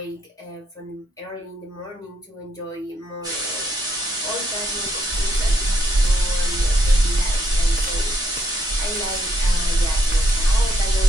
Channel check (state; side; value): normal; both; correlation 0.73